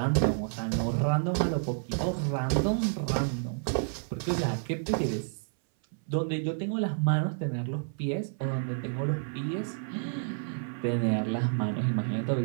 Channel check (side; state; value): left; silent; 58 dB below the other